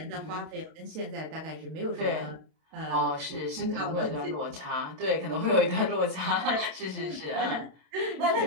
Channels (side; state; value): left; late; 32 ms